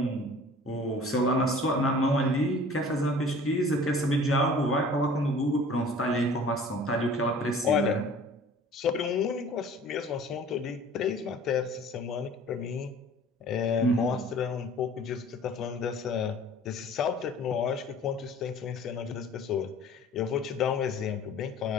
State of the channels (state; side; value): normal; both; correlation 0.48